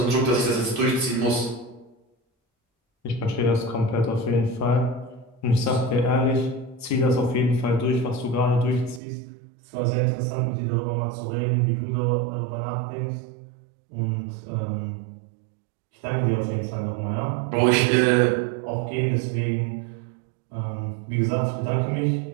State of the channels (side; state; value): left; drops out; at 9.0 s